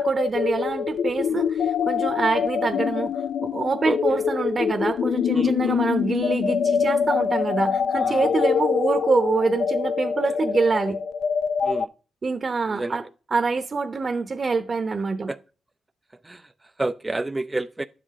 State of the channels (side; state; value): both; normal; correlation 0.80